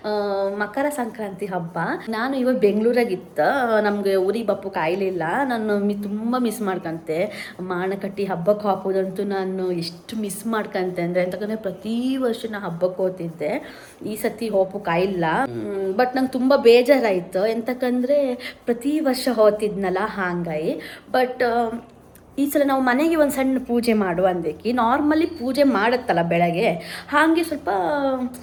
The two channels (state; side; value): identical; both; correlation 1.00